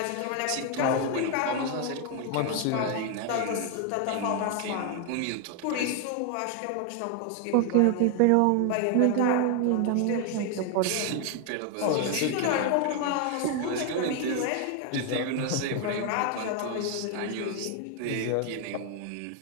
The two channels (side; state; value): both; different; correlation 0.01